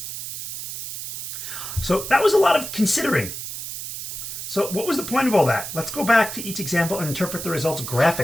So that was a lot of considering. So what was the point of all that? Let's go back to each example and interpret the results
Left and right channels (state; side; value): noise; right; hiss, 7 dB below the sound